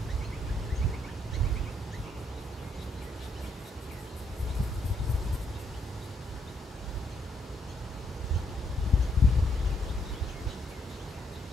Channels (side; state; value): both; normal; correlation 0.74